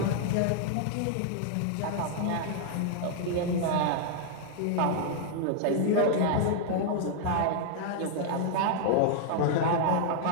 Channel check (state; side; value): different; both; correlation -0.01